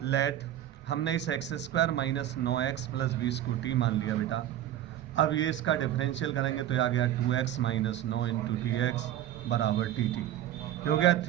लेट हमने इस x² - 9x + 20 को t मान लिया बेटा। अब ये इसका डिफरेंशियल करेंगे तो ये आ गया 2x - 9 × dx बराबर dt। ये हो गया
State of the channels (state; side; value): quieter; left; 12.1 dB